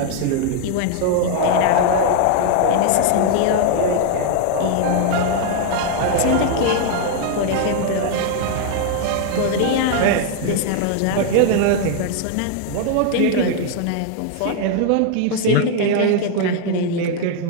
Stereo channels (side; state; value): both; different; correlation 0.00